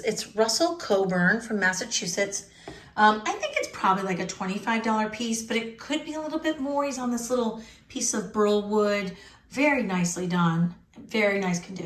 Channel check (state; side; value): identical; both; correlation 1.00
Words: it's Russell Coburn from Massachusetts. I think it's probably like a $25 piece, but it could be a little bit more. He's on this little piece of burl wood. Very nicely done. Very nice